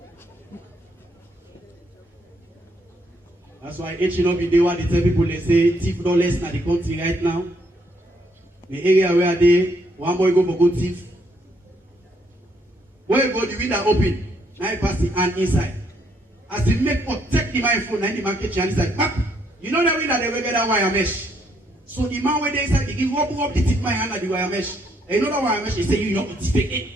That's why H no be there where they tell people they say thief no less na the country right now. The area where they one boy go for go thief. When you go the window open, now you pass the hand inside. As he make protect the man phone, now the man catch you inside. Back. You know that window they will get that wire mesh. So the man when they inside, he give up the tip my hand at the wire mesh. And you know that wire mesh, he say you know it's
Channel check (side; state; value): both; normal; correlation 0.71